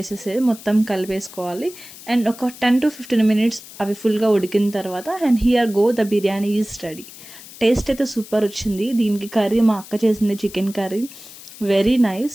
మొత్తం కలిపేసుకోవాలి. అండ్ ఒక 10 to 15 మినిట్స్ అవి ఫుల్గా ఉడికిన తర్వాత and here go the biryani is ready. Taste అయితే సూపర్ వచ్చింది. దీనికి కర్రీ మా అక్క చేసింది, chicken curry, very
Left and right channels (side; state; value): left; noise; hiss, 17 dB below the sound